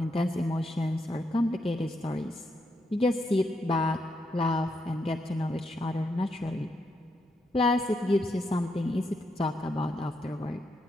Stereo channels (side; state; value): both; normal; correlation 0.80